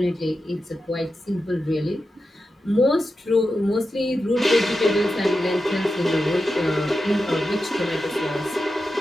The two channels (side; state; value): both; normal; correlation 0.90